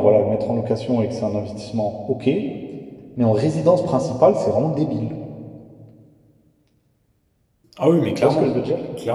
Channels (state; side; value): identical; both; correlation 1.00